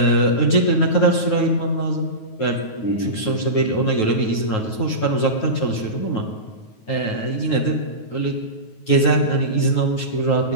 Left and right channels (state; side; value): late; right; 9.3 ms